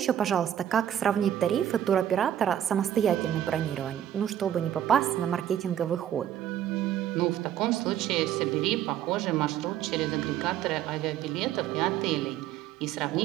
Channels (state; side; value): quieter; left; 10.7 dB